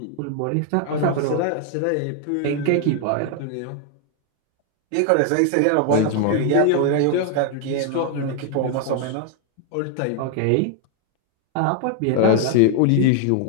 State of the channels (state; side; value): different; both; correlation 0.00